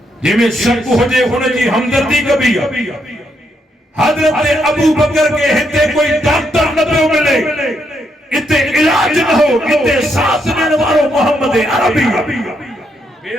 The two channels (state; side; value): normal; both; correlation 0.77